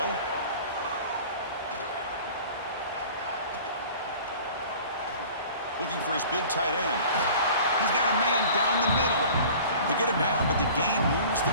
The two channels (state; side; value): inverted; both; correlation -0.44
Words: Looking for his big tight end. He's got a man down the middle. They get him down, but the gain moves